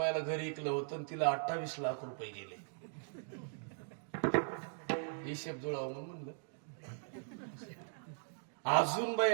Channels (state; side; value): silent; left; digital silence